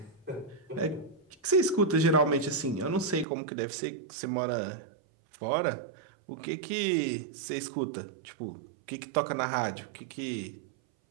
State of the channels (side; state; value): left; drops out; at 3.2 s